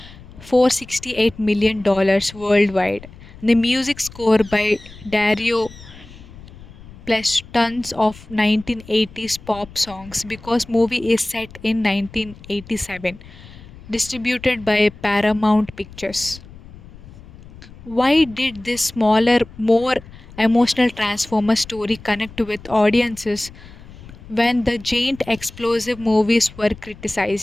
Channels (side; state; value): left; noise; rumble, 19 dB below the sound